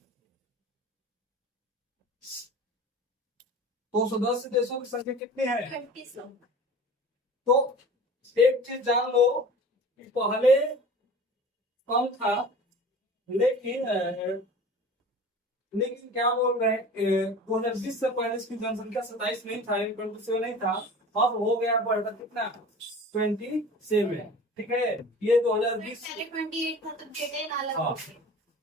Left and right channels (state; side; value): normal; both; correlation 0.40